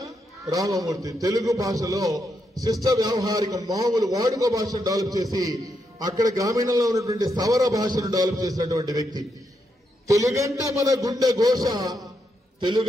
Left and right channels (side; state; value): both; normal; correlation 0.81